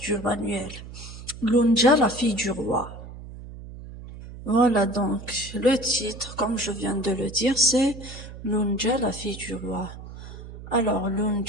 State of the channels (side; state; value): right; noise; hum, 13 dB below the sound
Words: du manuel. Lunja, la fille du roi. Voilà donc, le titre, comme je viens de le dire, c'est Lunja, la fille du roi. Alors,